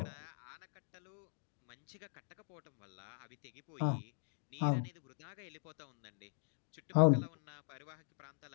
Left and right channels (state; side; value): silent; right; digital silence